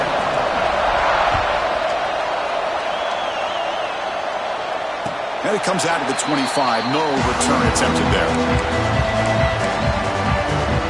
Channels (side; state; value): both; identical; correlation 1.00